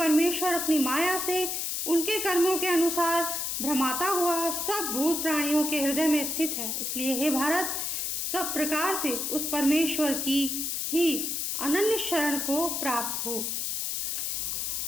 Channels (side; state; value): left; noise; hiss, 1 dB below the sound